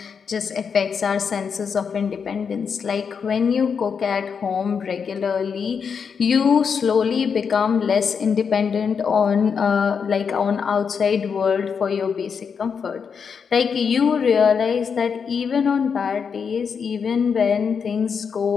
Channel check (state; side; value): quieter; right; 6.3 dB